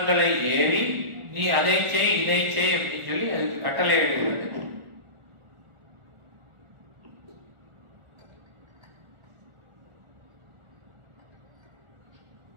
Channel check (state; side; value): late; left; 1.4 ms